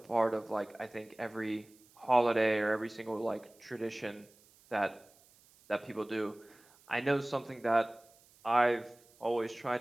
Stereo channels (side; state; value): right; noise; hiss, 28 dB below the sound